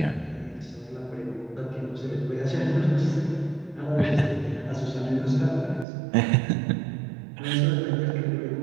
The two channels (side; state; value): left; drops out; at 5.9 s